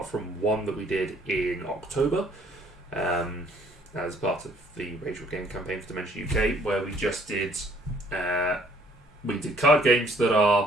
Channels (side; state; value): both; normal; correlation 0.62